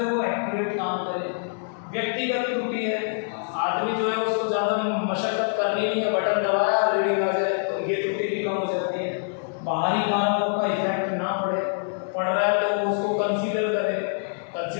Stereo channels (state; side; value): silent; right; 62 dB below the other